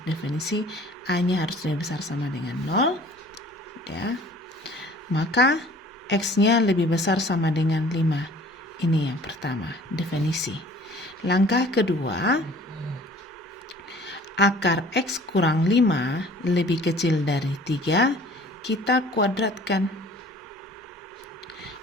definisi, A-nya harus lebih besar sama dengan 0. Ya. Maka X-nya lebih besar sama dengan 5. Ini yang pertama, definisi. Langkah kedua, akar X kurang 5 lebih kecil dari 3. kita kuadratkan.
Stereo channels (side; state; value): both; normal; correlation 0.50